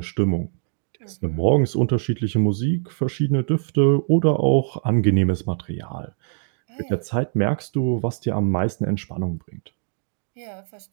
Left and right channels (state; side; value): silent; left; digital silence